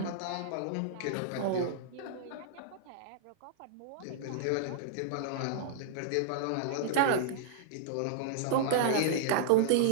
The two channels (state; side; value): different; both; correlation -0.02